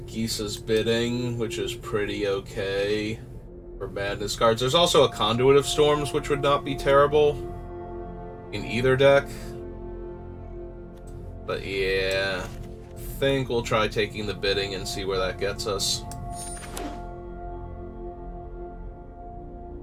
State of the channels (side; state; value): both; identical; correlation 1.00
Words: Bidding, which is pretty okay for madness cards. There's also a Conduit of Storms, which would not be terrible in either deck. But yeah, I think we'll try taking the Bidding and see where that gets us.